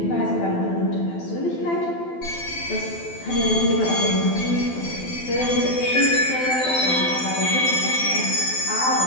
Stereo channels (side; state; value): right; late; 12 ms